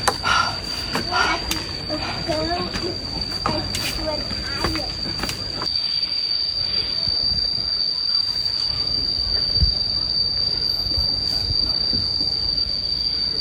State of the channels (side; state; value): both; identical; correlation 1.00